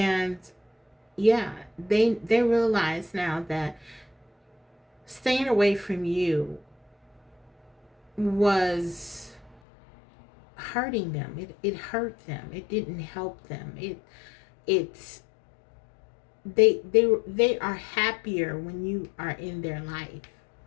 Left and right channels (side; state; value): right; drops out; at 9.6 s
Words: yeah, they realize now that staying away from you was hurting them. It hurt them. It didn't help them. They are happier when you are in their life.